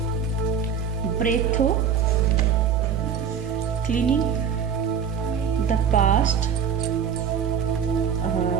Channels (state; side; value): quieter; left; 7.3 dB